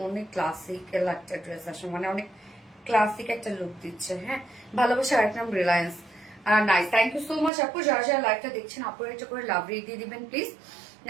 অনেক ক্লাসিক্যাল একটা ড্রেস আসলে, মানে অনেক ক্লাসিক একটা লুক দিচ্ছে। হ্যাঁ, ভালোবাসা। আরেক নাম Reliance. Nice, thank you so much আপু। যারা যারা লাইভটা দেখছেন আপু একটা করে লাভ রেট দিয়ে দিবেন please.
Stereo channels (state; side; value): drops out; left; at 7.5 s